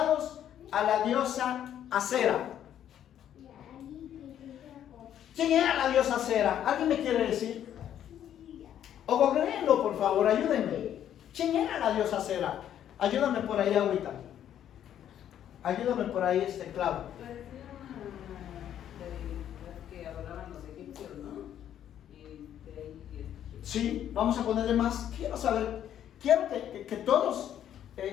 a la diosa Acera. ¿Quién era la diosa Acera? ¿Alguien me quiere decir? O googleenlo, por favor, ayúdenme. ¿Quién era la diosa Acera? Ayúdame por ahí, ahorita. Ayúdame por ahí, Clau. Sí, vamos a ponerle más. Quiero saber, quiero que todos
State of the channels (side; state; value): right; quieter; 10.4 dB